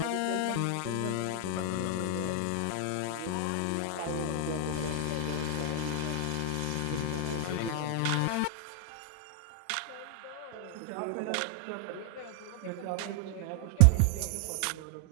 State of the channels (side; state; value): both; different; correlation 0.00